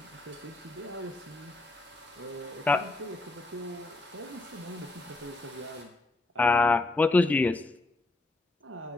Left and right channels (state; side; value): quieter; right; 3.1 dB